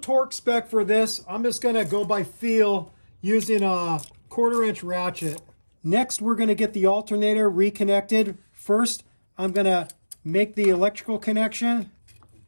spec for this. I'm just going to go by feel using a 1/4-inch ratchet. Next, we're going to get the alternator reconnected. First, I'm going to make the electrical connection.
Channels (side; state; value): both; inverted; correlation -1.00